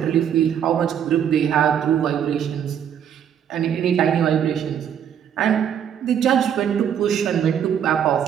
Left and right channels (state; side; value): quieter; left; 9.0 dB